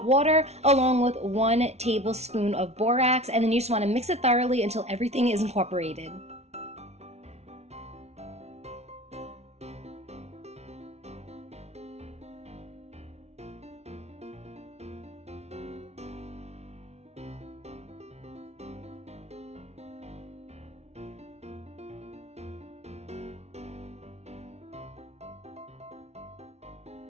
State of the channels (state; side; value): late; left; 0.31 ms